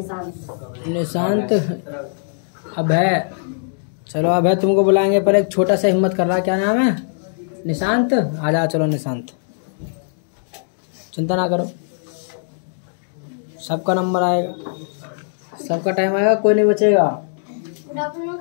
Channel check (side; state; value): right; silent; digital silence